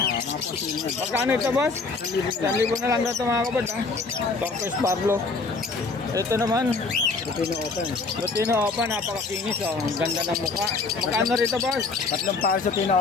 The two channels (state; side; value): quieter; right; 4.0 dB